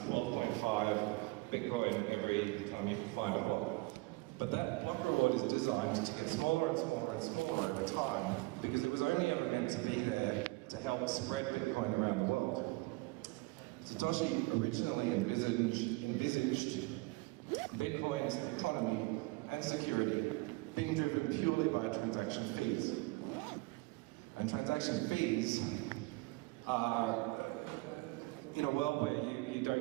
12.5 Bitcoin every time you find a block. But that block reward is designed to get smaller and smaller and smaller over time, because it was only ever meant to be there to help spread Bitcoin around the world. Satoshi originally envisaged Bitcoin's economy and security being driven purely by transaction fees. And transaction fees are, in a world where you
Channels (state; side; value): quieter; left; 23.8 dB